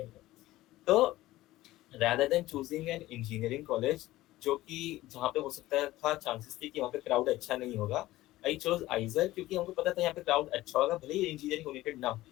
तो rather than choosing an engineering college जो कि जहाँ पे हो सकता था चांसेस थे कि वहाँ पे क्राउड अच्छा नहीं होगा, आई चोज आइजर क्योंकि हमको पता था यहाँ पे क्राउड अच्छा होगा, भले ही इंजीनियरिंग ओरिएंटेड ना हो।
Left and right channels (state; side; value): quieter; right; 16.7 dB